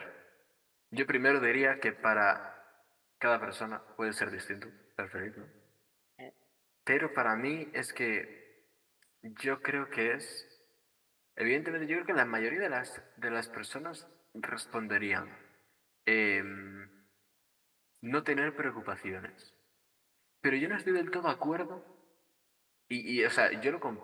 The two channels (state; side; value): identical; both; correlation 1.00